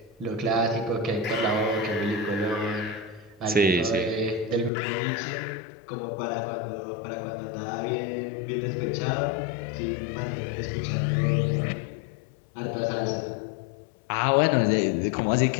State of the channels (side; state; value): right; drops out; at 4.7 s